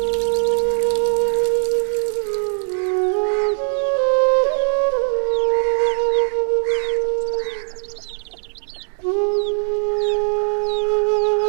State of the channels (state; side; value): silent; left; digital silence